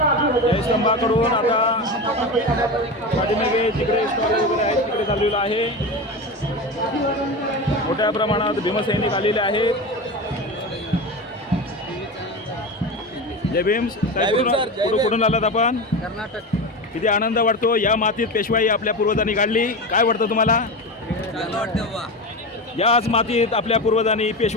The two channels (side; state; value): both; normal; correlation 0.24